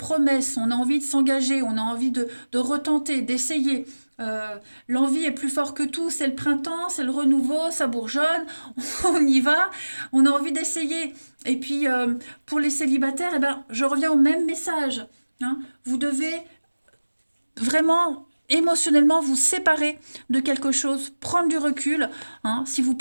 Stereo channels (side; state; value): both; inverted; correlation -1.00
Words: on a envie de s'engager, on a envie de retenter, d'essayer. L'envie est plus fort que tout, c'est le printemps, c'est le renouveau, ça bourgeonne, on y va, on a envie d'essayer. Et puis pour les célibataires, eh ben, je reviens au même message, hein. Vous devez vraiment émotionnellement vous séparer de quelque chose, prendre du recul, hein. Si vous